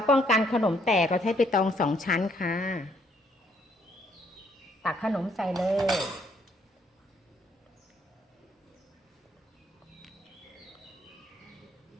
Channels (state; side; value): normal; both; correlation 0.68